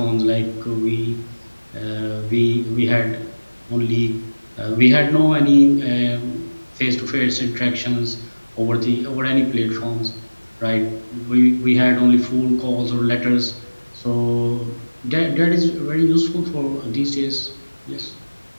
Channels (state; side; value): inverted; both; correlation -1.00